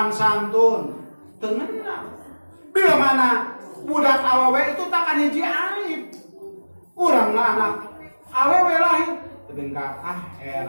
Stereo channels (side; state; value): both; inverted; correlation -1.00